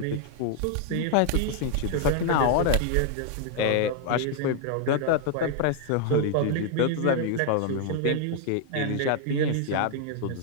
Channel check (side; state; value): both; different; correlation 0.00